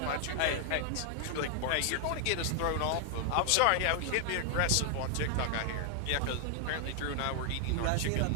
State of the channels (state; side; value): different; both; correlation 0.00